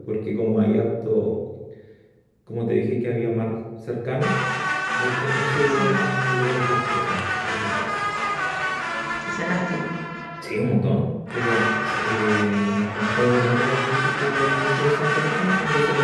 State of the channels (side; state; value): both; identical; correlation 1.00